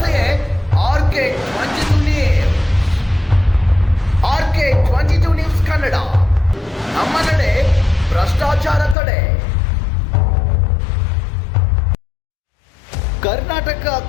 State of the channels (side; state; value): right; drops out; at 9.0 s